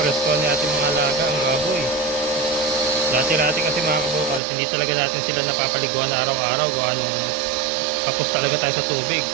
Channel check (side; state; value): left; drops out; at 4.4 s